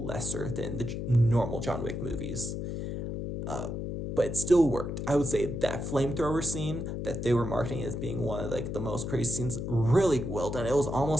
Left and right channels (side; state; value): left; noise; hum, 4 dB below the sound